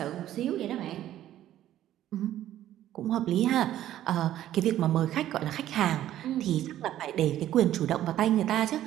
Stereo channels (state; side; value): quieter; left; 12.6 dB